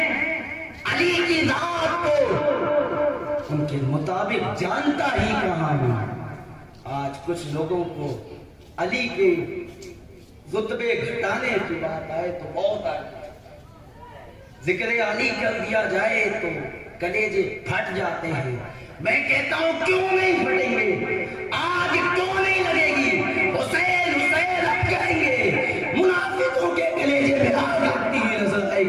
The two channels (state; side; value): identical; both; correlation 1.00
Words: علی کی ذات کو ان کے مطابق جانتا ہی کہاں ہوں۔ آج کچھ لوگوں کو علی کے رتبے گھٹانے کی بات آئے تو بہت آئے، ذکر علی کر دیا جائے تو کلیجے پھٹ جاتے ہیں۔ میں کہتا ہوں کیوں نہیں پھٹیں گے؟ آج کیوں نہیں لگے گی؟ حسین حسین اب کہیں گے، منافقوں کے کلیجے میں آگ لگتی ہوئی نظر آئے